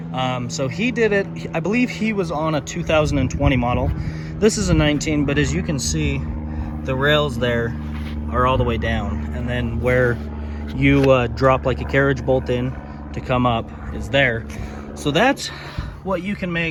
So he did it, I believe he was on a 2020 model. This is a 19, but as you can see, the rails there are all the way down. And then where you drop like a carriage bolt in to come up is there. So that's what you can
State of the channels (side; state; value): both; identical; correlation 1.00